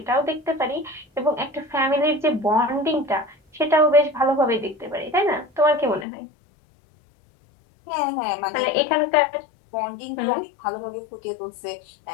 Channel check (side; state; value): right; drops out; at 6.1 s